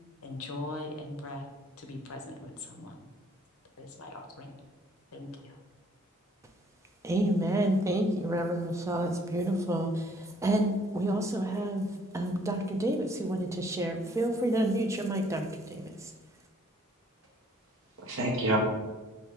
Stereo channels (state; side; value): normal; both; correlation 0.61